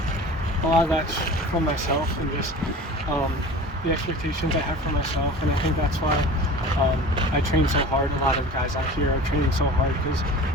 a lot of that's from myself and just the expectations I have for myself, and I think that's why I train so hard. A lot of guys out here are training so hard because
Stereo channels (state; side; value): normal; both; correlation 0.38